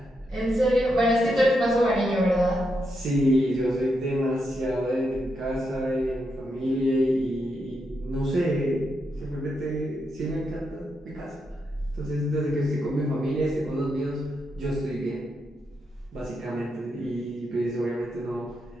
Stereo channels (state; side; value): normal; both; correlation 0.83